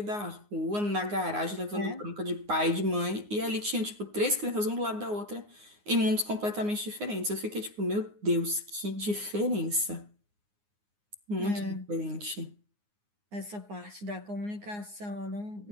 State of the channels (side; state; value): left; late; 9.6 ms